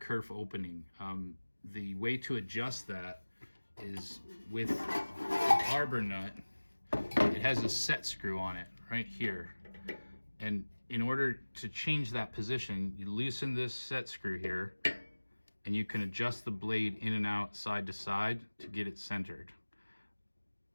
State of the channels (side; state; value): both; inverted; correlation -1.00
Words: opening. The way to adjust that is with the arbor nut. It has a set screw on it right here. And in order to change that position, you loosen this set screw here, and you can adjust the blade in and out, side to side, to get it centered.